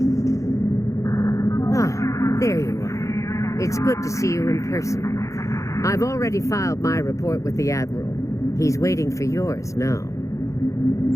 There you are. It's good to see you in person. I've already filed my report with the Admiral. He's waiting for yours now.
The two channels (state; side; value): late; right; 0.15 ms